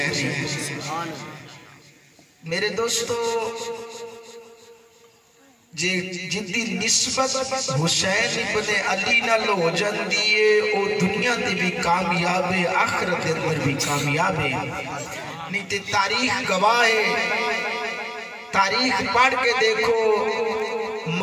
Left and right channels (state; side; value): identical; both; correlation 1.00